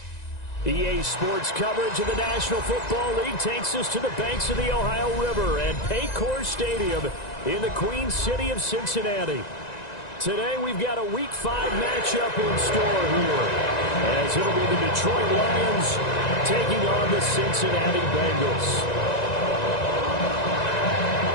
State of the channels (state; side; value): late; right; 1.9 ms